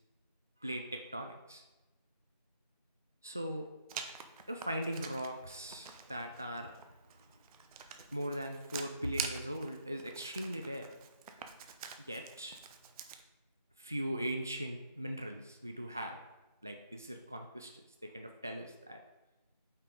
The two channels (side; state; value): both; inverted; correlation -0.71